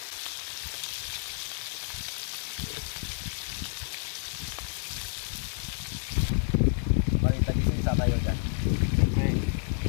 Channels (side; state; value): right; silent; 58 dB below the other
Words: Balik tagi isa tayo dyan. Siyempre,